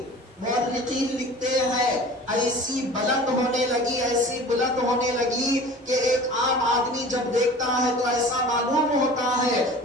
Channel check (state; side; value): normal; both; correlation 0.41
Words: مورخین لکھتے ہیں ایسی بلند ہونے لگی، ایسی بلند ہونے لگی کہ ایک عام آدمی جب دیکھتا ہے تو ایسا معلوم ہوتا ہے